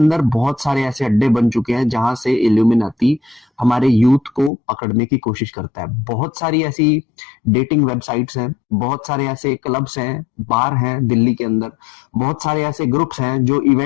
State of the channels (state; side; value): drops out; right; at 4.5 s